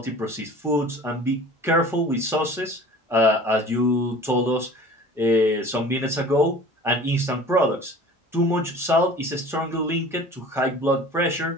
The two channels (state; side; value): normal; both; correlation 0.43